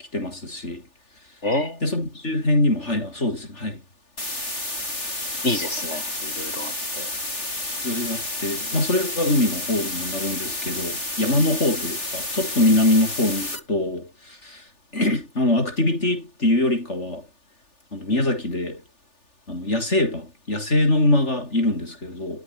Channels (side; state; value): right; late; 3.4 ms